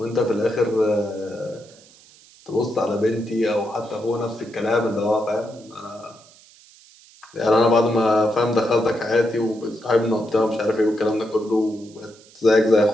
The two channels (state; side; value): noise; right; hiss, 25 dB below the sound